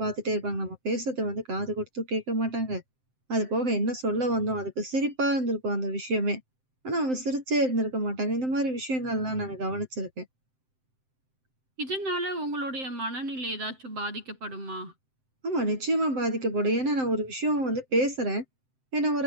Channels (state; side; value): late; left; 7.7 ms